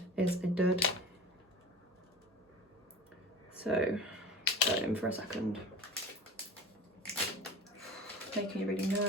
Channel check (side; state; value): both; normal; correlation 0.35